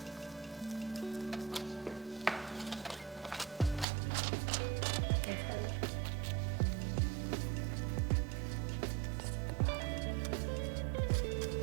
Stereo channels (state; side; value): drops out; left; at 3.9 s